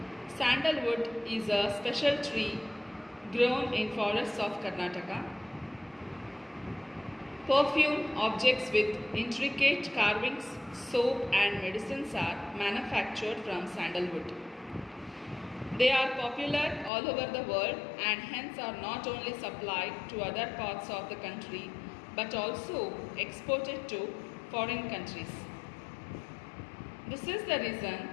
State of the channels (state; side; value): drops out; right; at 16.9 s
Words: Sandalwood is a special tree grown in forests of Karnataka. Perfume objects with intricate carvings, soap and medicines are manufactured from sandalwood. They are popular all over the world and hence are not only supplied to other parts of the country but also exported to foreign countries. This is the